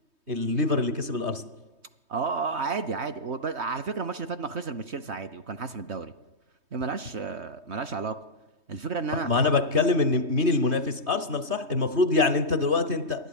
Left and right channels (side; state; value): left; late; 3.2 ms